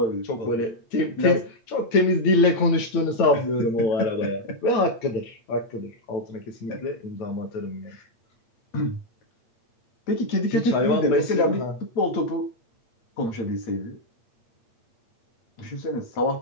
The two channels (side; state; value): right; late; 8.6 ms